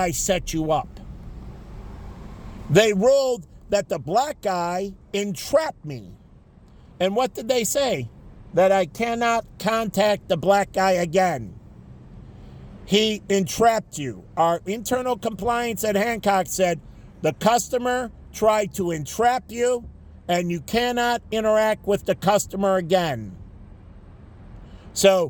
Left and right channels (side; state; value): both; identical; correlation 1.00